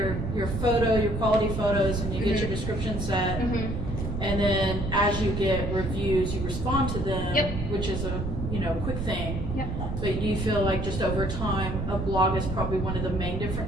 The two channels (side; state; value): right; noise; rumble, 4 dB below the sound